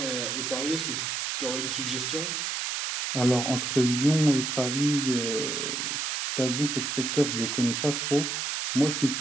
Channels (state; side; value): noise; right; hiss, 2 dB below the sound